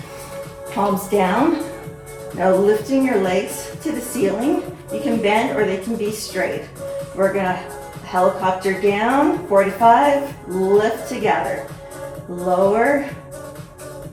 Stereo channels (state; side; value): identical; both; correlation 1.00